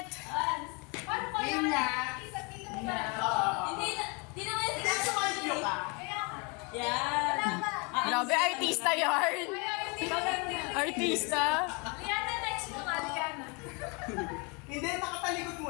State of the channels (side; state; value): right; quieter; 31.3 dB